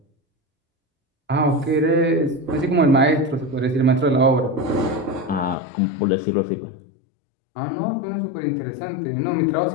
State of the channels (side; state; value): right; drops out; at 5.6 s